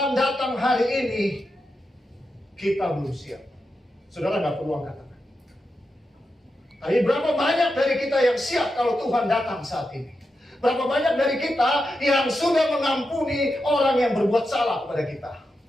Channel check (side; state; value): both; normal; correlation 0.88